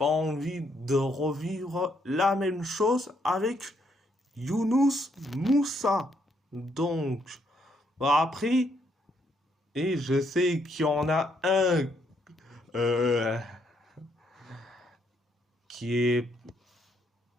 envie de revivre la même chose avec Younous Moussa. Donc, bah après, et je sais qu'il y en a un euh, qui est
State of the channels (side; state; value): both; normal; correlation 0.73